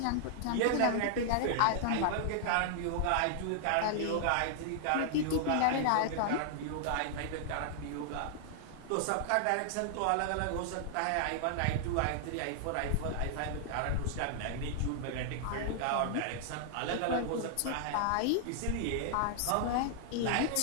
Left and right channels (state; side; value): different; both; correlation -0.01